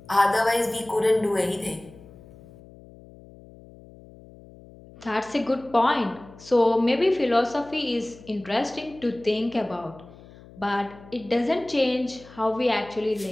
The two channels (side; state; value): left; noise; hum, 21 dB below the sound